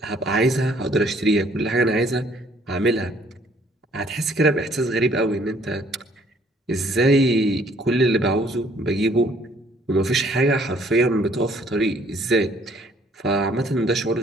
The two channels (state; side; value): normal; both; correlation 0.61